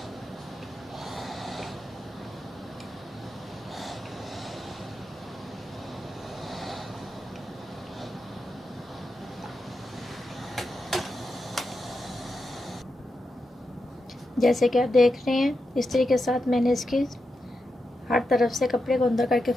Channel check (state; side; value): normal; both; correlation 0.87